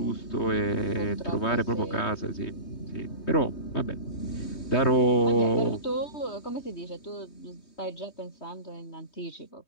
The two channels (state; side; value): late; right; 3.2 ms